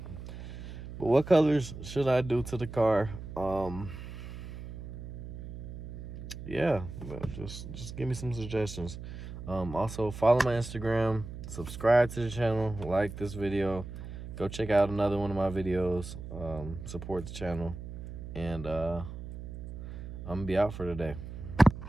But what colors should I do to the car? Yeah, just give me some suggestions. Also follow my Instagram, subscribe to the channel, like this video, go check out another one of my videos, support the channel, and I'm gonna be out for today.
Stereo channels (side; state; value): right; noise; hum, 10 dB below the sound